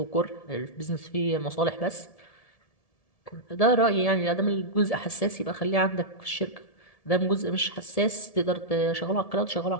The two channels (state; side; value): late; right; 1.7 ms